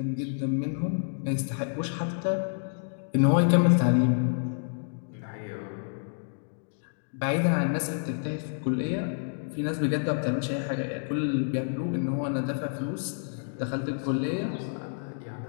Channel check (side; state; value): right; silent; digital silence